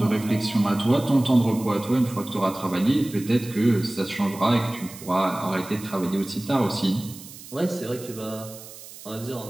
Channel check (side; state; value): right; noise; hiss, 16 dB below the sound